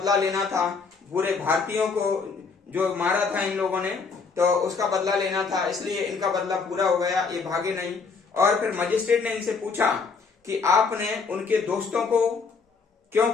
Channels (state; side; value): quieter; right; 4.9 dB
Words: लेना था, पूरे भारतीयों को जो मारा था इन लोगों ने तो उसका बदला लेना था, इसलिए इनका बदला पूरा हो गया, ये भागे नहीं। और फिर मजिस्ट्रेट ने इनसे पूछा कि आपने उनके दोस्तों को क्यों